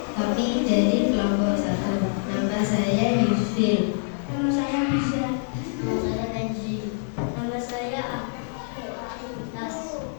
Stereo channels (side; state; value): right; silent; digital silence